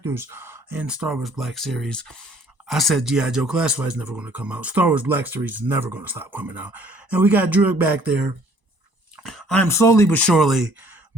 in Star Wars Black Series. I said G.I. Joe Classified is never going to come out. Star Wars Black Series is never going to stop coming out. And we got Druig back there. I'm slowly but surely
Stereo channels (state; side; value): late; left; 1.0 ms